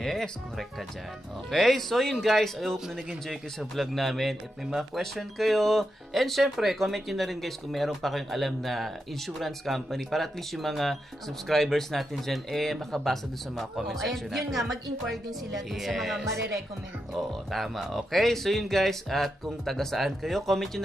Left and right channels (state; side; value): normal; both; correlation 0.86